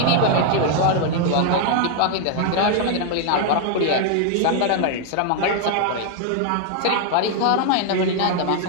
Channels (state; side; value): different; both; correlation 0.00